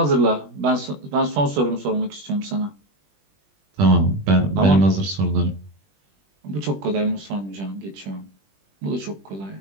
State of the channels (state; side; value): late; left; 20 ms